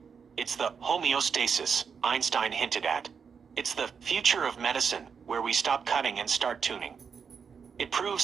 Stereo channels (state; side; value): quieter; left; 6.3 dB